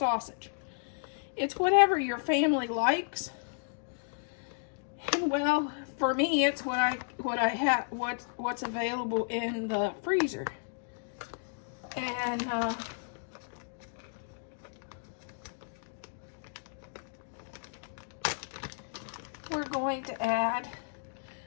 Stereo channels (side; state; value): right; silent; digital silence